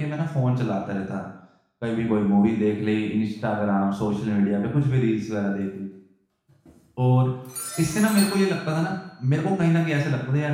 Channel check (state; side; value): identical; both; correlation 1.00